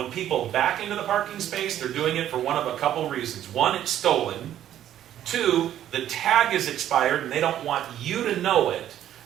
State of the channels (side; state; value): left; quieter; 11.5 dB